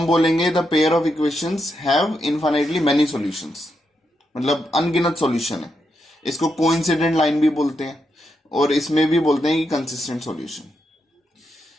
बोलेंगे the pair of equations have infinitely many solutions. मतलब अनगिनत सॉल्यूशन है. इसको कोइंसिडेंट लाइन भी बोलते हैं और इसमें भी बोलते हैं कि कंसिस्टेंट सॉल्यूशन.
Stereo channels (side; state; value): both; normal; correlation 0.83